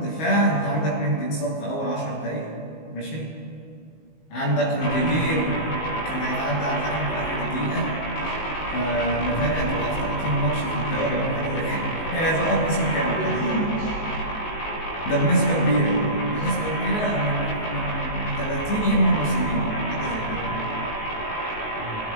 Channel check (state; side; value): late; right; 19 ms